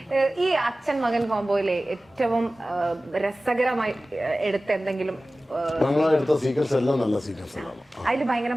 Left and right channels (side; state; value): both; normal; correlation 0.96